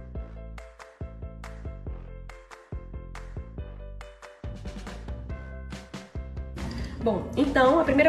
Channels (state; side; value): identical; both; correlation 1.00